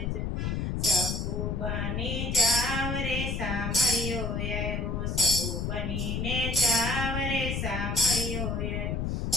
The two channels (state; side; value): noise; left; rumble, 1 dB below the sound